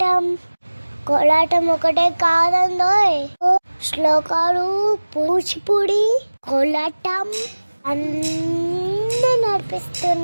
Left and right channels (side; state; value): both; inverted; correlation -1.00